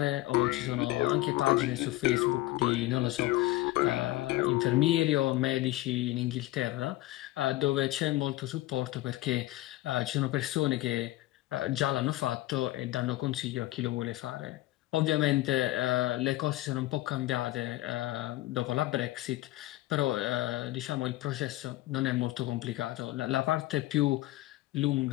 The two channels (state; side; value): quieter; right; 17.2 dB